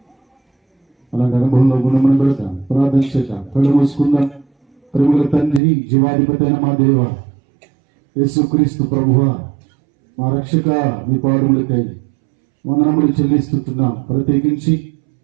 అలాంటి అనుభవంలో గుణమని పెడతాం. ప్రార్థన చేద్దాం, కళ్ళు మూసుకుందాం. ప్రేమల తండ్రి, జీవాధిపతి అయిన మా దేవ యేసుక్రీస్తు ప్రభువా, మా రక్షక, మీ పాదములకై వందనములు చెల్లిస్తున్నాం. ప్రత్యేకించి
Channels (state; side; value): drops out; left; at 5.6 s